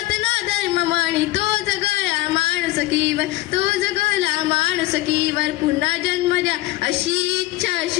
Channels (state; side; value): quieter; right; 17.8 dB